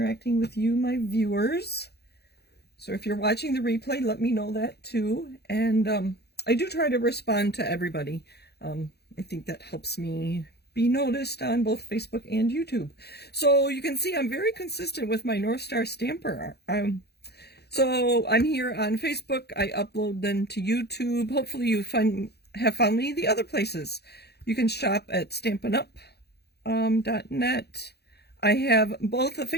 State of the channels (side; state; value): right; late; 0.48 ms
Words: with you, my viewers. So if you're watching the replay, let me know that too. And I do try to respond to everybody. I think that helps me be noticed on both Facebook and YouTube. So you can see I'm very consistent with my North Star Stamper. So I'm here on Facebook. I upload them to YouTube. Hopefully you have found me the other places. You can shop at stampinup.net. I have both a